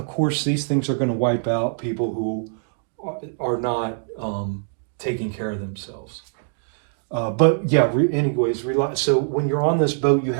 course, these things are going to wipe out people who are not taking care of themselves. But yeah, anyways, so when you're on this boat, you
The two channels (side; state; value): left; silent; digital silence